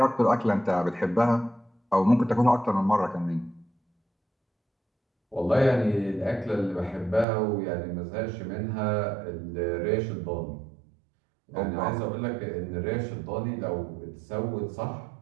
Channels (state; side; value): drops out; left; at 7.2 s